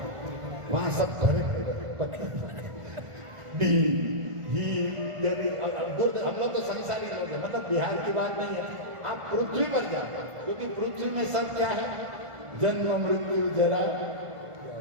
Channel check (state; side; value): late; left; 1.5 ms